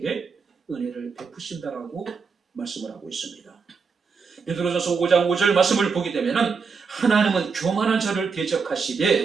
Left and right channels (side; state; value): left; quieter; 5.3 dB